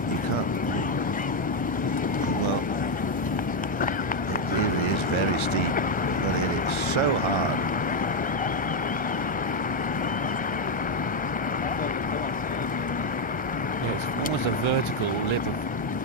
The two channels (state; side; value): late; right; 1.3 ms